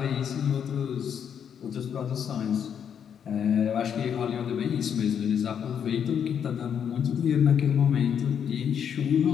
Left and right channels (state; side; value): quieter; right; 8.1 dB